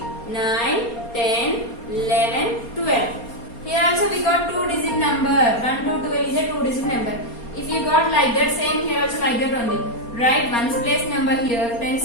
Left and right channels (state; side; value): late; right; 4.3 ms